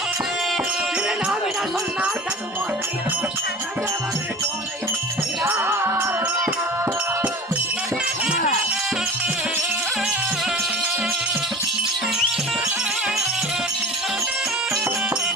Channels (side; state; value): both; normal; correlation 0.38